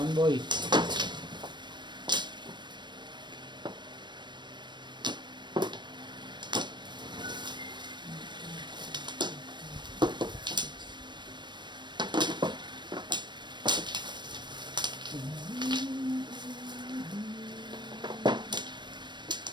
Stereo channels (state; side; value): late; left; 0.22 ms